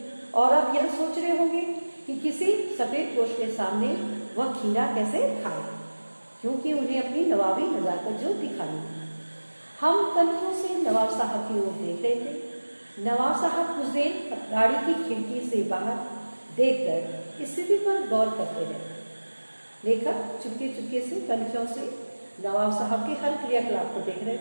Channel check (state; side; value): inverted; both; correlation -1.00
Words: और अब यह सोच रहे होंगे कि किसी सफ़ेद पोश के सामने वह खीरा कैसे खाए, क्योंकि उन्हें अपनी नवाबी नज़ाकत जो दिखानी है। हम कन्खों से नवाब साहब की ओर देख रहे थे। नवाब साहब कुछ देर गाड़ी की खिड़की से बाहर देखकर स्थिति पर गौर करते रहे। लेखक चुपके चुपके से कन्खों से नवाब साहब के हर क्रियाकलाप को देख रहे